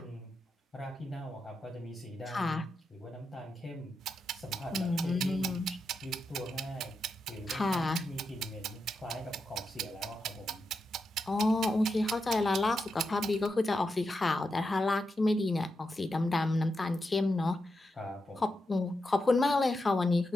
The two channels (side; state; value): both; normal; correlation 0.86